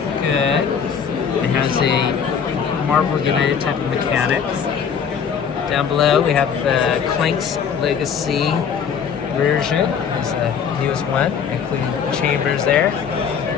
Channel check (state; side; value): quieter; right; 7.1 dB